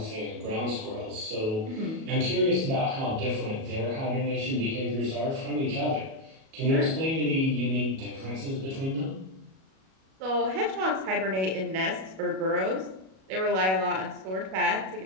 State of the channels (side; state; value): left; late; 37 ms